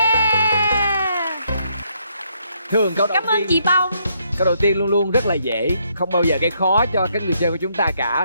Thường câu đầu Cảm ơn tiên, chị Bông. câu đầu tiên luôn luôn rất là dễ, không bao giờ gây khó cho các người chơi của chúng ta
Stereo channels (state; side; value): inverted; both; correlation -0.73